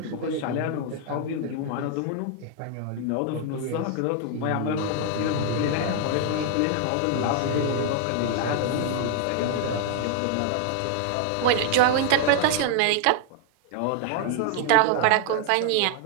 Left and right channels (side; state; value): both; different; correlation 0.00